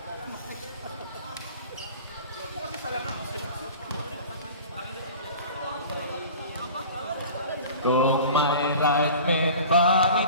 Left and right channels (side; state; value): both; inverted; correlation -0.41